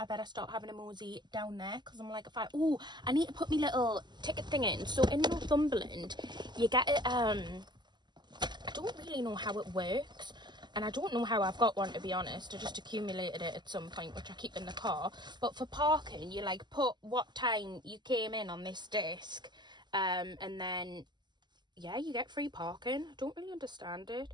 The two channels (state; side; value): late; left; 0.21 ms